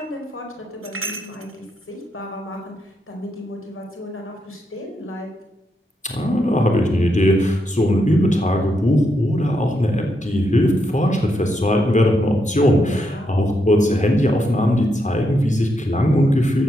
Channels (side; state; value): both; normal; correlation 0.81